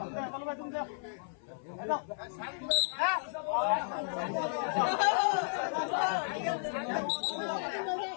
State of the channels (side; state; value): right; silent; 55 dB below the other